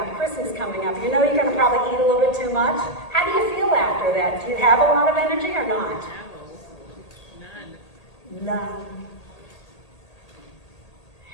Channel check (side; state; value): right; late; 1.8 ms